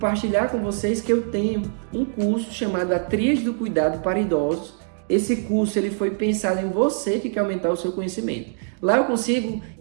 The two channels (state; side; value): silent; left; digital silence